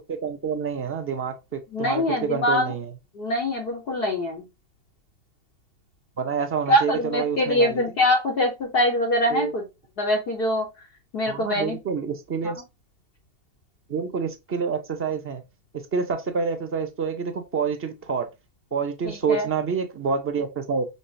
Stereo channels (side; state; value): right; late; 2.7 ms